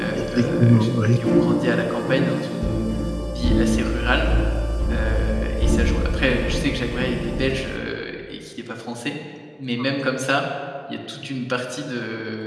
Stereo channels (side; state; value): both; identical; correlation 1.00